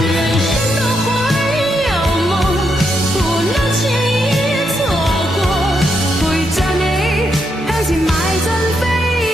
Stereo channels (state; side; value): normal; both; correlation 0.80